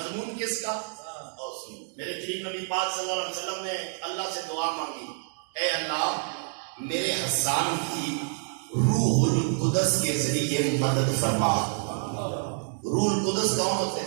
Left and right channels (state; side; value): silent; left; digital silence